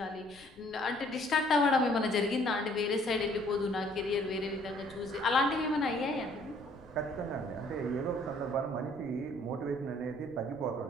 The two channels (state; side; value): noise; left; rumble, 27 dB below the sound